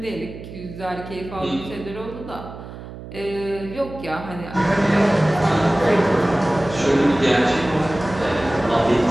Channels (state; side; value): noise; right; hum, 13 dB below the sound